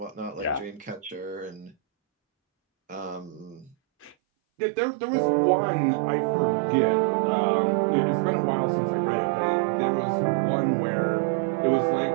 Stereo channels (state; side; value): drops out; left; at 4.2 s